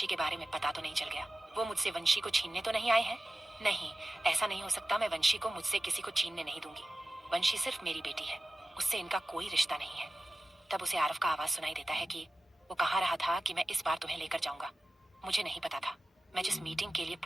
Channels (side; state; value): both; normal; correlation 0.95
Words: के बारे में पता तो नहीं चल गया, वो मुझसे वंशी को छीनने तो नहीं आए हैं। नहीं, ऐसा नहीं हो सकता, मैं वंशी को मुझसे किसी को छीनने नहीं दूंगी। वंशी सिर्फ मेरी बेटी है, उससे इनका कोई रिश्ता नहीं है। तब उसे आरव का आवाज सुनाई देता है कि वो कहा रहा था कि मैं इस बार तुम्हें लेकर जाऊंगा। मुझे नहीं पता था, मैं जिस मीटिंग के लिए